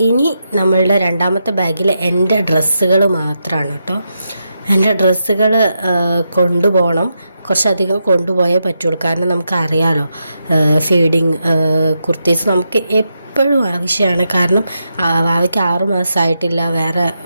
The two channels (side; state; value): both; inverted; correlation -0.85